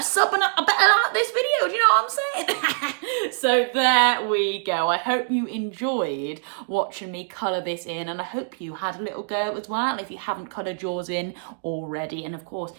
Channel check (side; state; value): left; silent; digital silence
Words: sub and I better like this video. Do you know what I'm saying? So there we go. I hope you enjoyed watching me colour this in, and I hope you had a little go as well if you haven't coloured yours in already. And of course,